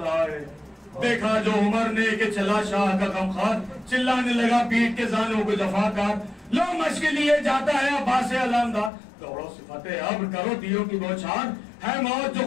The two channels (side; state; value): right; drops out; at 8.9 s